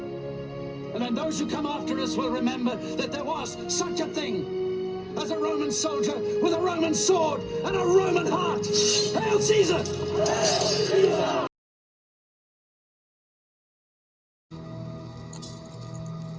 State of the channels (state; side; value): identical; both; correlation 1.00